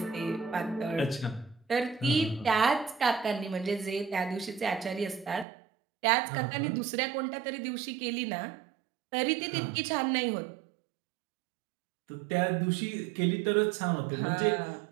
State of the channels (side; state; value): left; drops out; at 5.5 s